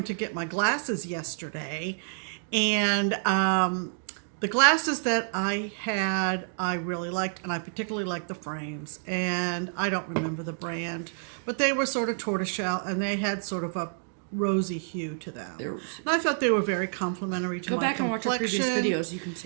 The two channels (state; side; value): silent; left; digital silence